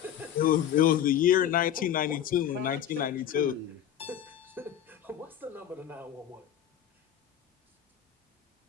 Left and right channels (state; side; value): quieter; right; 10.4 dB